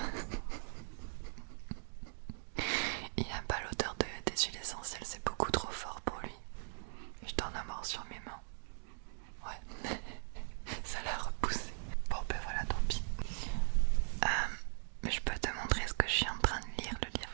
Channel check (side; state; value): left; silent; digital silence